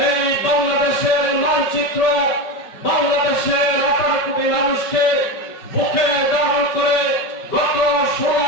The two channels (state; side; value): late; right; 5.4 ms